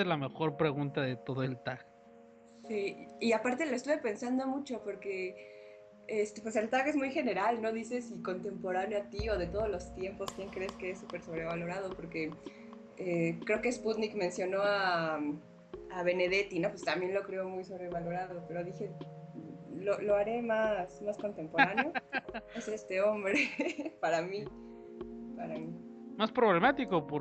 es la mejor pregunta de todo el tag. Sí, y aparte lo estuve pensando mucho porque pues el tag es muy general, no dice si contemporáneo a ti o de todos los tiempos, quién crees que es súper sobrevalorado, porque creo que Sputnik mencionó a Benedetti, ¿no? Pues también lo creo muy sobrevalorado, pero dije, lo haré más contemporáneo. Es este hombre, para mí. Más problemático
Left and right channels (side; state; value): both; identical; correlation 1.00